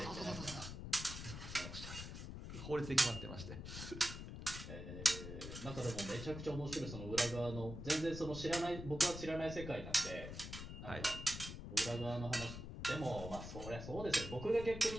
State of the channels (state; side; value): noise; left; rumble, 8 dB below the sound